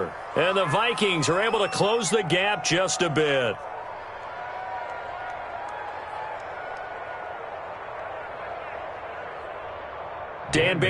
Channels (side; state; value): both; identical; correlation 1.00